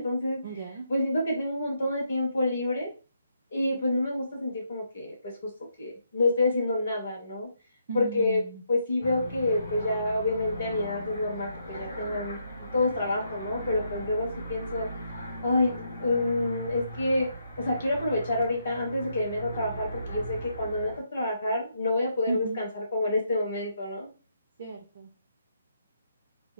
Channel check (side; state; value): both; inverted; correlation -0.77